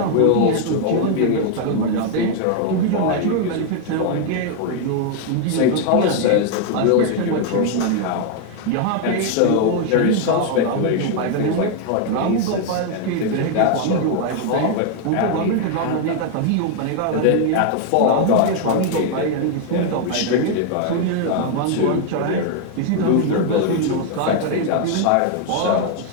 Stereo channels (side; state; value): both; different; correlation 0.00